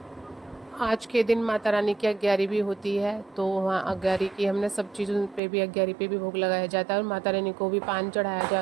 आज के दिन माता रानी की अग्यारी भी होती है, तो वहाँ अग्यारी की हमने सब चीज़ों पे भी, अग्यारी पे भी भोग लगाया जाता है, और माता रानी को भी पान चढ़ाया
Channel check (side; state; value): left; drops out; at 5.4 s